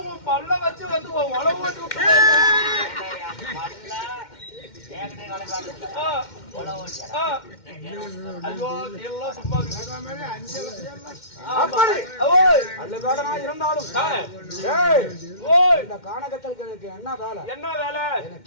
உன் பல்ல வச்சு வந்து உழவு ஓட்டி விட்டு இருந்தாலும் இந்த கானகத்தலுக்கு எனக்கு என்ன வேலை? என்ன வேலை?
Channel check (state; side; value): late; right; 2.1 ms